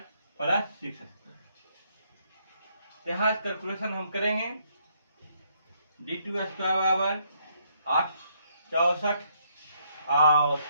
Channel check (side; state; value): both; inverted; correlation -0.71